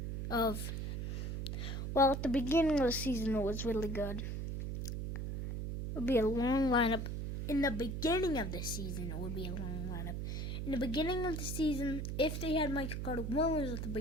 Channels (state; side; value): noise; right; hum, 3 dB below the sound